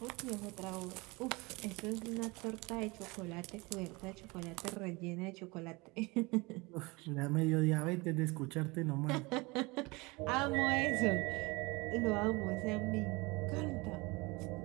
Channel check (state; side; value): quieter; left; 25.0 dB